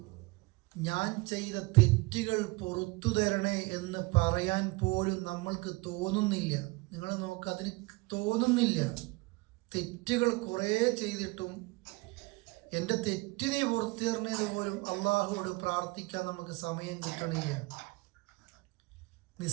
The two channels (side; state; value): left; quieter; 24.7 dB